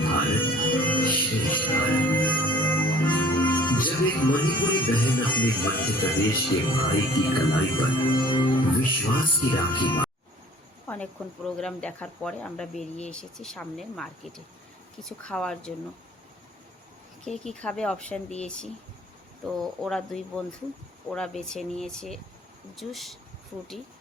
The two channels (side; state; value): both; normal; correlation 0.51